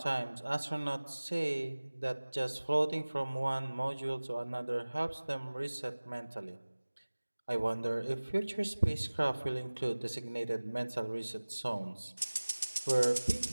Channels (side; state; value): both; inverted; correlation -1.00